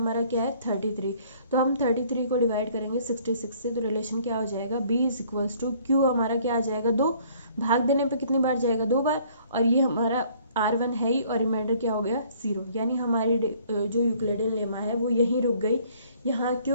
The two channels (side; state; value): both; inverted; correlation -0.59